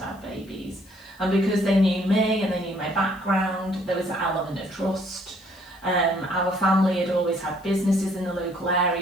babies. And because they knew me and they knew my background, there was an element of trust. Our family had always had businesses in the local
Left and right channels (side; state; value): left; noise; hiss, 27 dB below the sound